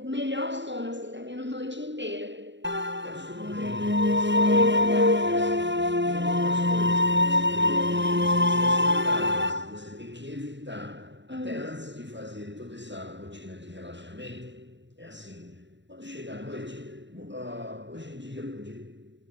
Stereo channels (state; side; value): late; left; 0.53 ms